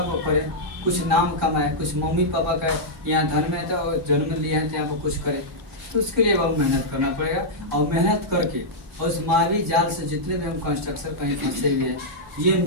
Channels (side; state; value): both; normal; correlation -0.08